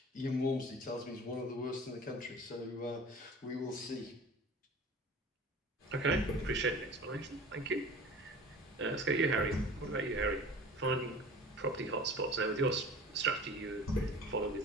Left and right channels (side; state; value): both; normal; correlation 0.41